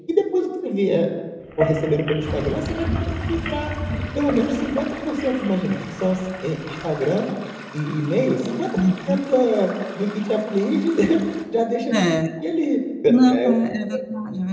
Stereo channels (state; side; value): identical; both; correlation 1.00